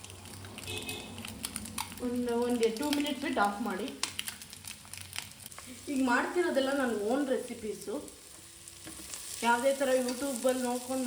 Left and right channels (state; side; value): identical; both; correlation 1.00